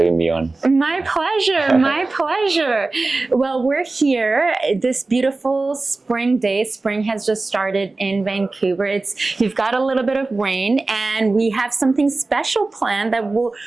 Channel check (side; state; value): left; quieter; 3.4 dB